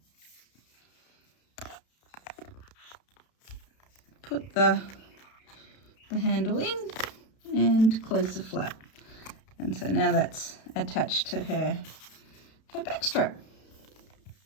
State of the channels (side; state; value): right; late; 32 ms